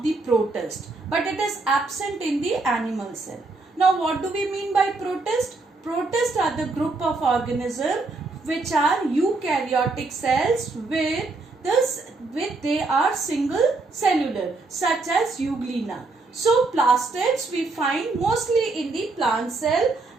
the protist, but it is absent in the animal cell. Now what do we mean by protist? Protists are the group of organisms which are eukaryotic cells they are single cellular, such as euglena. So plastids we find mostly in the plant cell,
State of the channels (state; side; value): quieter; left; 3.5 dB